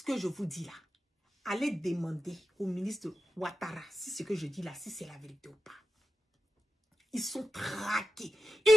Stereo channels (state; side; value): normal; both; correlation 0.91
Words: que je vous dis là, allez demander au ministre de Ouattara si ce que je dis là, si c'est la vérité ou pas. Ils sont traqués.